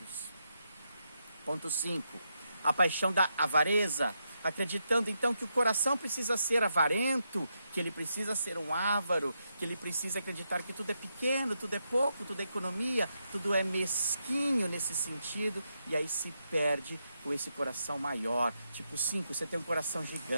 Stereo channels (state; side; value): inverted; both; correlation -0.83